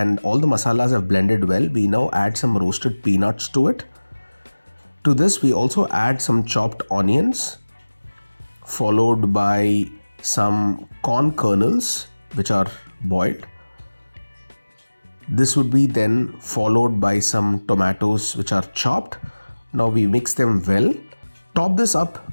all the masalas have blended well, we now add some roasted peanuts to it. To this, we also add some chopped onions, followed by some corn kernels which are boiled. This would be then followed by some tomatoes which are chopped. Now we mix them well. Top this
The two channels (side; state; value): both; inverted; correlation -1.00